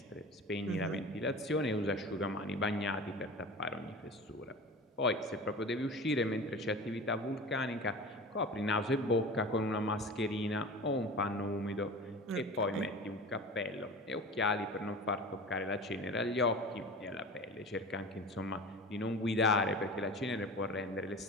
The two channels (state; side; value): normal; both; correlation 0.35